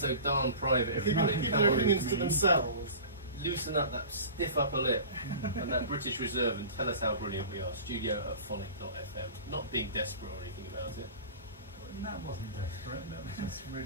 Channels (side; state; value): both; inverted; correlation -0.36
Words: darn private, everybody. Keep their opinions to themselves. Loosen up that stiff upper lip and that British reserve and tell us how brilliant we are. Studio@phonic.fm. Not being desperate or anything about it. That wasn't desperate, that was just